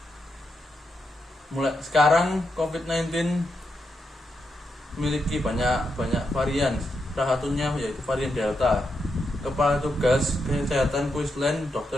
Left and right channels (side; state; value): both; normal; correlation 0.84